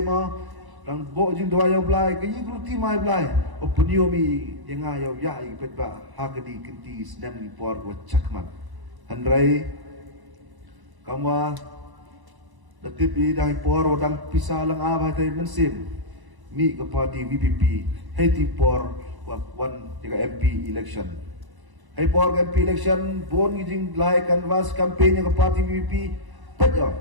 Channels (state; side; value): late; left; 1.0 ms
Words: dang bo jing do ayo blai ke yi gruti mai blai opunio mi yenga yo ya i pet ba hagdi kinti snam ni por go chakman handrai kamwa datip i dang por dang pisah lang aba tai mensim mi ke parti BPP heti por wan jaga MP election hai por MP election bon jing lai canvas campaign ke parti BPP pet yo